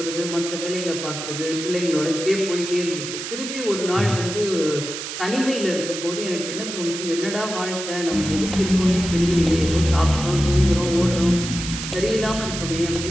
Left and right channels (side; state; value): right; noise; hiss, 7 dB below the sound